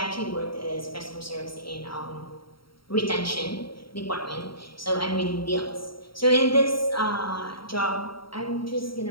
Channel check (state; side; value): late; right; 0.74 ms